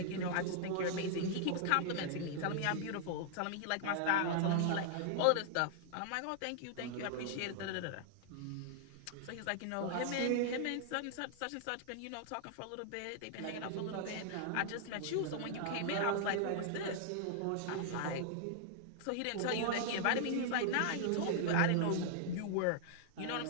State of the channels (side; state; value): both; different; correlation -0.01